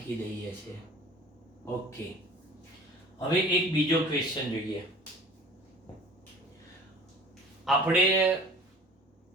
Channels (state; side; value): normal; both; correlation 0.44